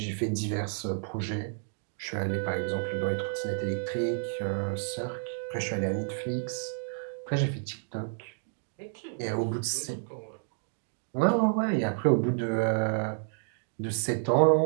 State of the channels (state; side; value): silent; left; digital silence